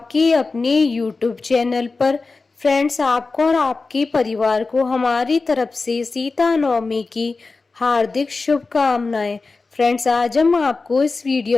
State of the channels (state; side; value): quieter; right; 3.9 dB